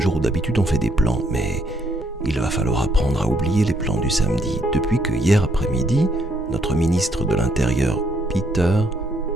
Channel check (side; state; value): both; normal; correlation 0.72